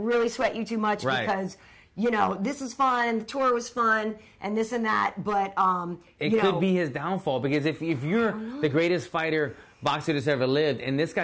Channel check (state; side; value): identical; both; correlation 1.00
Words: really sweat you too much because this is fun, the tour was fun, and this and that. But it could be his downfall because if you're the greatest boxer that's ever lived, and this